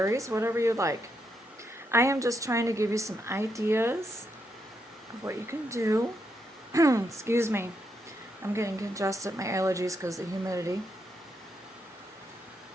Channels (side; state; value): both; normal; correlation 0.80